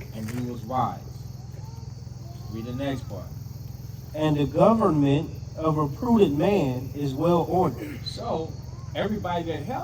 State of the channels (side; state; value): both; identical; correlation 1.00